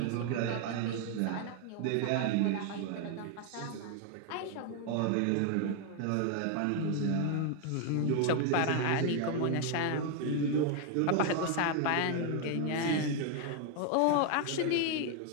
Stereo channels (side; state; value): both; different; correlation 0.00